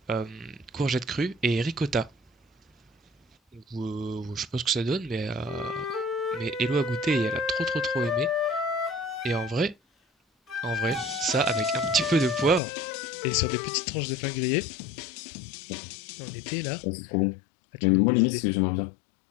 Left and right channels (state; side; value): drops out; right; at 12.6 s